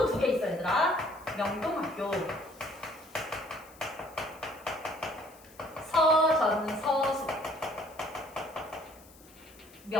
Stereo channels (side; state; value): left; noise; hiss, 24 dB below the sound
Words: 2개 있어 얘들아. 명동학교. 서전서수.